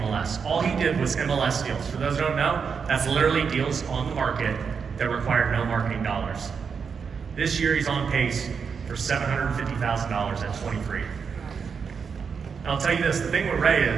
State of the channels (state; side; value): quieter; left; 6.1 dB